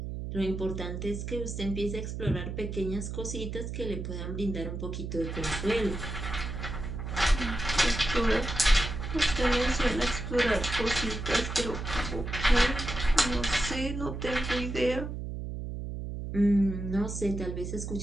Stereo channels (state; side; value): noise; right; hum, 6 dB below the sound